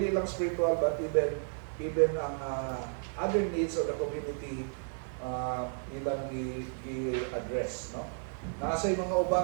lang spiritual, but even ang other needs of the community ilang i-address, no? Nasa yung mga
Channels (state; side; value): silent; left; digital silence